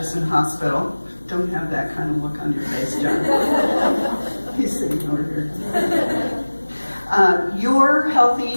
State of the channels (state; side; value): inverted; both; correlation -1.00